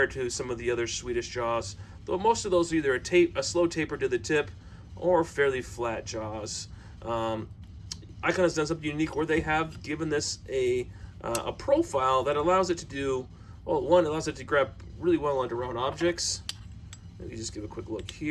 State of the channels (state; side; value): identical; both; correlation 1.00